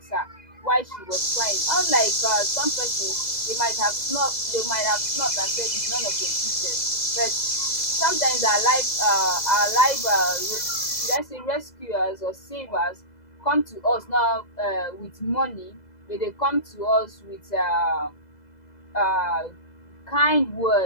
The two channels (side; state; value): right; late; 2.0 ms